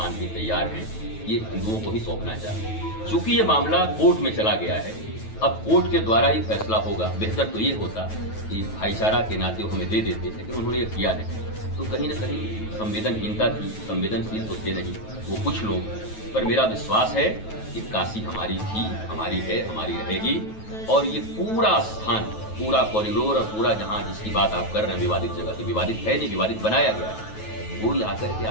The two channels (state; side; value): late; right; 9.2 ms